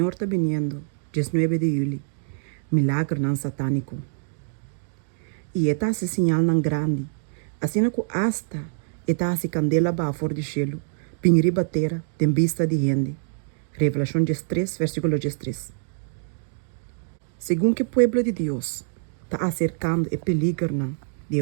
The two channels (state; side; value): silent; left; digital silence